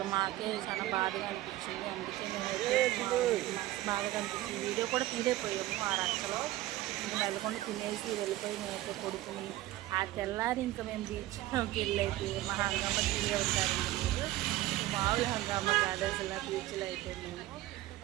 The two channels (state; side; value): quieter; left; 16.1 dB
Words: మాకే చాలా బాధగా అనిపించింది. అందుకే మేము బాధగా అనిపించింది. వీడియో కూడా తీరైపోయాము ఆ రచ్చలో. ఇంకా నెలకొని తినేసి వెళ్ళిపోయి మేమైతే కొడుకుని ఆ తెల్లారి ఇంకా మేము బీచ్లోకి వెళ్ళైతే మా హంగామా తీరే ఉంటారండి. మీరు మామూలు హంగామా కాదు అసలు బీచ్లో అయితే